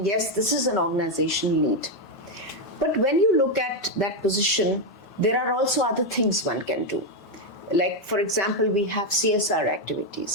Yes, this is an organization need. But when you look at that position, there are also other things one can do. Like, for example, we have CSR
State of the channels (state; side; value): normal; both; correlation 0.05